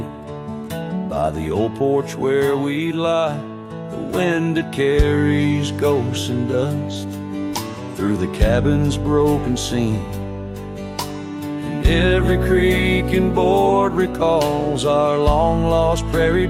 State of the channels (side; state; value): both; identical; correlation 1.00